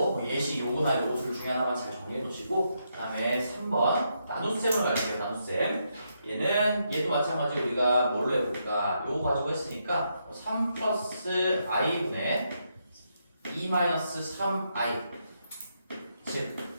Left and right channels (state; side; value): inverted; both; correlation -0.80